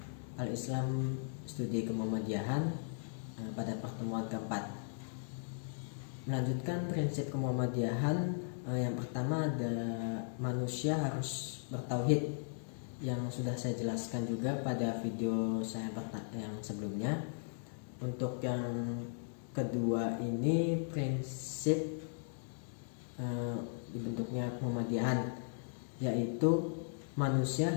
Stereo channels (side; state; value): right; silent; digital silence